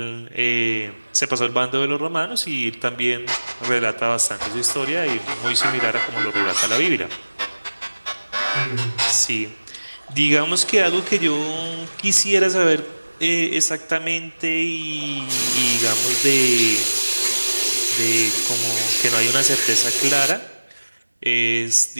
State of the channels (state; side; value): inverted; both; correlation -1.00